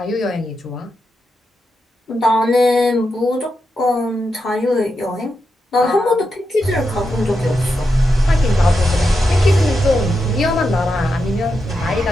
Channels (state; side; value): normal; both; correlation 0.87